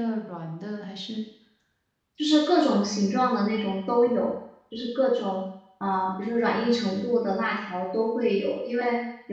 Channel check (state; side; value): identical; both; correlation 1.00